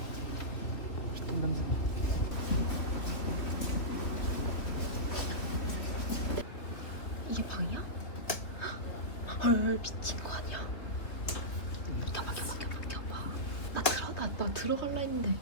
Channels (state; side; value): late; right; 3.1 ms